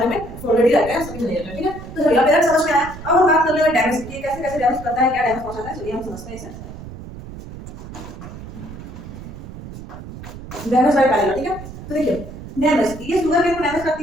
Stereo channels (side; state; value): right; noise; rumble, 13 dB below the sound